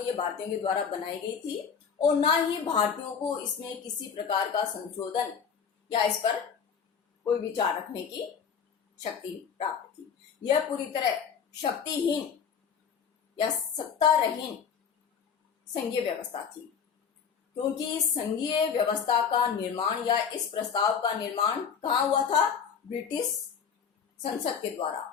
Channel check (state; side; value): quieter; right; 6.9 dB